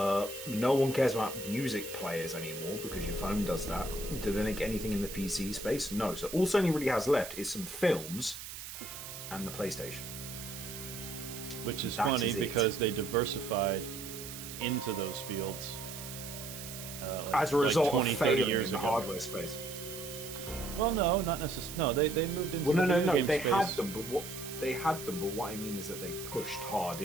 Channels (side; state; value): right; noise; hiss, 10 dB below the sound